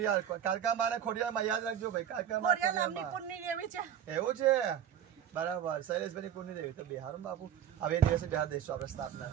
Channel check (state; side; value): quieter; left; 9.5 dB